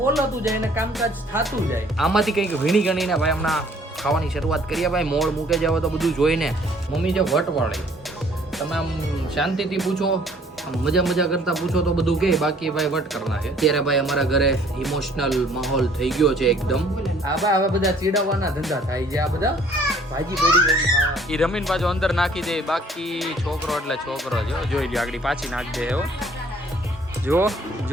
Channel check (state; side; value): normal; both; correlation 0.58